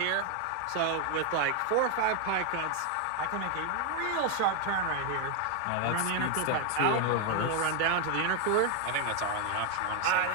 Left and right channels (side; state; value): both; different; correlation 0.01